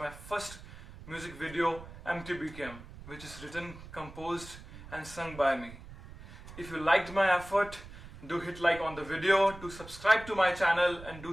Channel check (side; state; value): right; noise; rumble, 16 dB below the sound